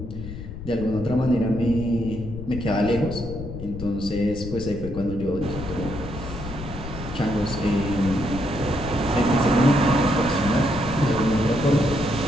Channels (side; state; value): left; noise; rumble, 9 dB below the sound